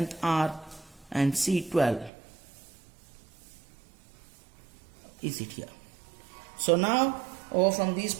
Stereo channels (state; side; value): drops out; left; at 2.1 s